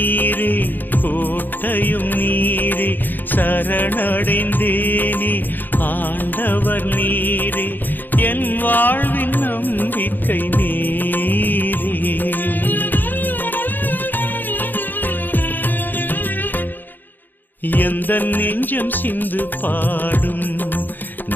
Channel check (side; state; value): right; late; 0.089 ms